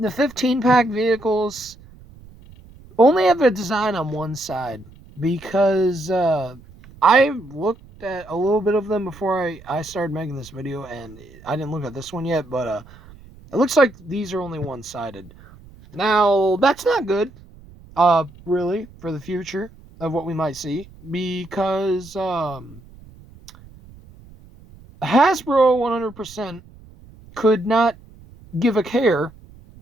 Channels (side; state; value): right; noise; rumble, 22 dB below the sound